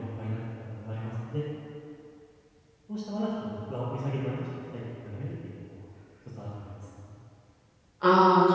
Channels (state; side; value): identical; both; correlation 1.00